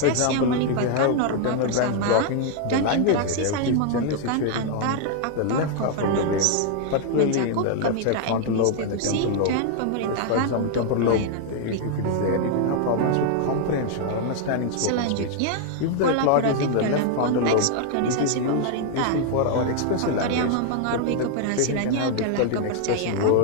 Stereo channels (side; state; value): both; different; correlation 0.00